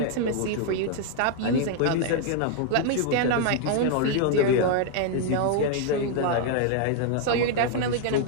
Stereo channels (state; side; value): different; both; correlation 0.00